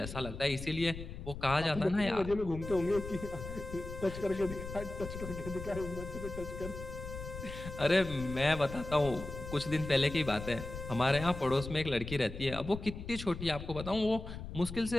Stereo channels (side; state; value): left; noise; rumble, 9 dB below the sound